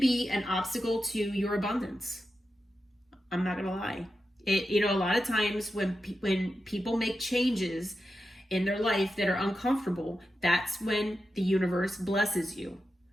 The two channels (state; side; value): normal; both; correlation 0.90